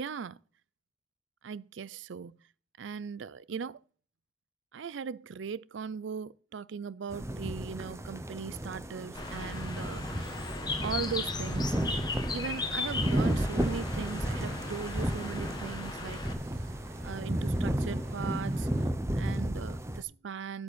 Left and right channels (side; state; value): both; normal; correlation 0.66